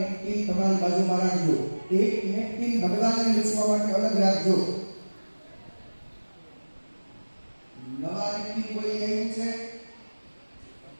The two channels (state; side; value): inverted; both; correlation -1.00